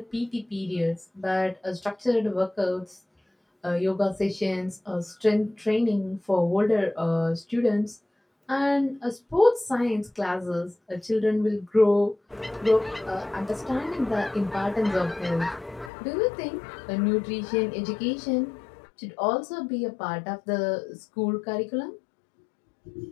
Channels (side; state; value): right; drops out; at 15.9 s